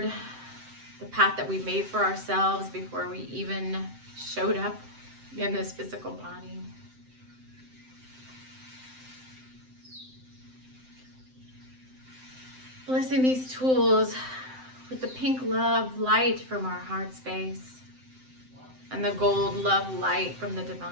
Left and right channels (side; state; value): left; late; 7.7 ms